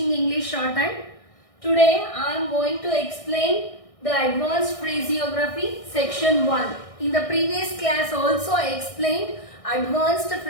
English Shorthand. Today I am going to explain the advanced phraseography section 1. In the previous class also I explained advanced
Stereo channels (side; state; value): right; late; 1.6 ms